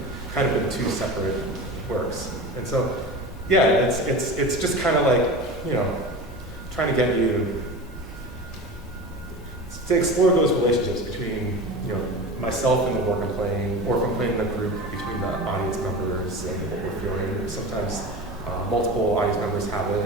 kind of in two separate works. And so, yeah, it's just kind of like, trying to get you to explore those relationships between, myself and the work I'm playing, or if I'm playing in a group, between the audience members and what we're feeling. Sometimes multiple audience members have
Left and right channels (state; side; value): normal; both; correlation 0.31